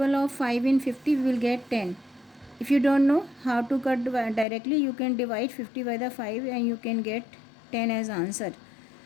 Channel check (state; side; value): drops out; right; at 4.5 s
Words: of 5 in 50, we will get 10. If you don't know how to cut directly, you can divide 50 by the 5 and you can get 10 as answer.